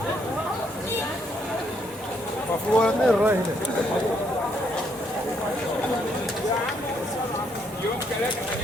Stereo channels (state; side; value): normal; both; correlation 0.72